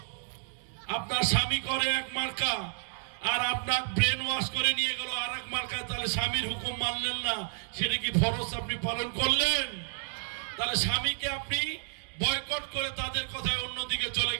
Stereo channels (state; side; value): silent; left; digital silence